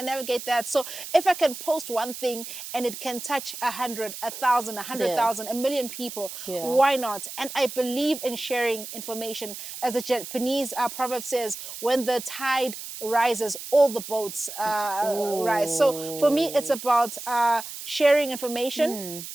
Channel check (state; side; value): noise; right; hiss, 10 dB below the sound